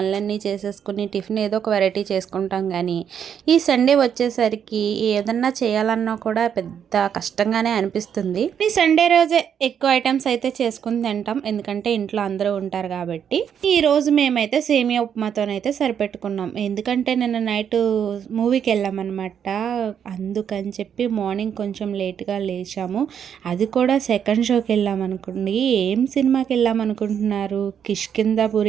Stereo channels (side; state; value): left; quieter; 8.3 dB